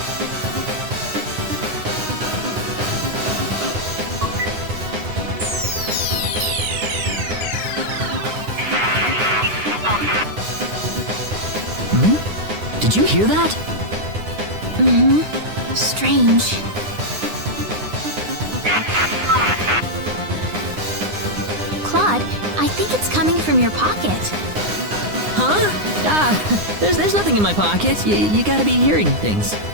Did you hear that? Strange. Claude, I think it's coming from your pocket. Huh? There's nothing in my pocket. You gotta be hearing things.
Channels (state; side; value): late; left; 9.8 ms